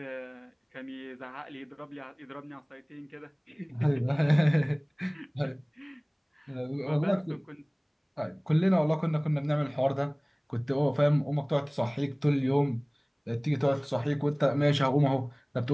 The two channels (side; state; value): both; identical; correlation 1.00